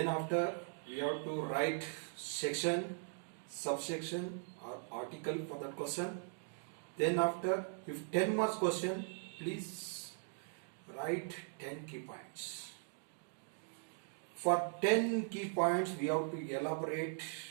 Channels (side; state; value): left; silent; digital silence